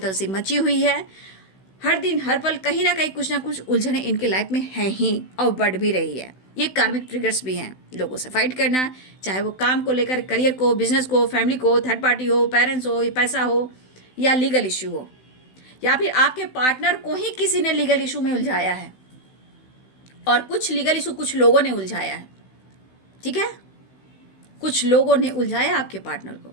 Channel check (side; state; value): right; late; 16 ms